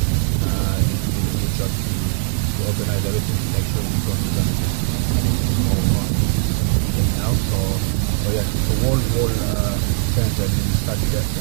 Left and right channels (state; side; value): silent; left; 66 dB below the other